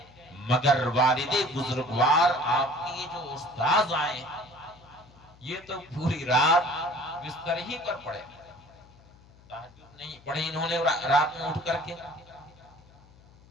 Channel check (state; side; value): noise; left; hum, 25 dB below the sound